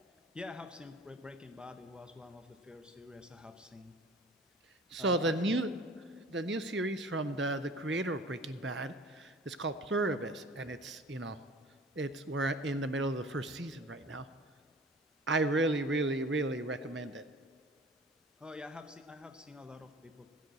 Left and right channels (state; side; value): normal; both; correlation 0.44